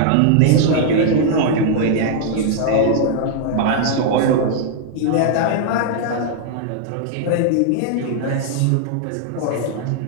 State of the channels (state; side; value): different; both; correlation -0.01